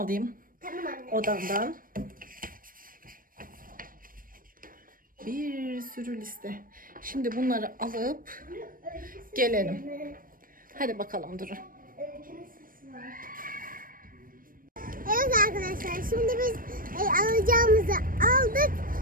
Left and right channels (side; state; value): left; late; 0.41 ms